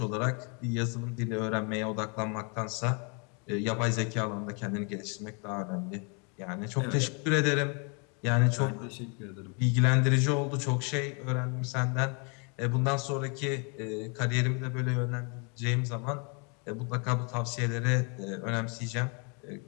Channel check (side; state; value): right; quieter; 35.5 dB